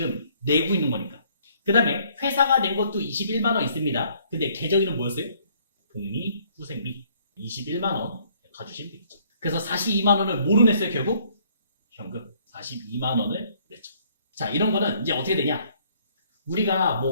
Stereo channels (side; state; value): both; inverted; correlation -0.63